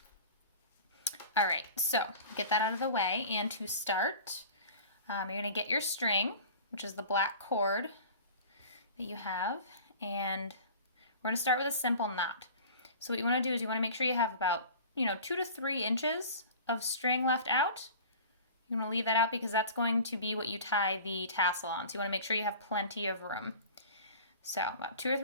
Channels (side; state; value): both; inverted; correlation -0.41